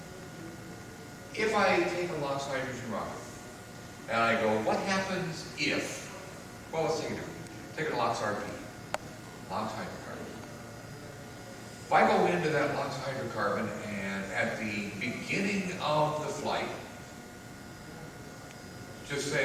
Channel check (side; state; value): both; identical; correlation 1.00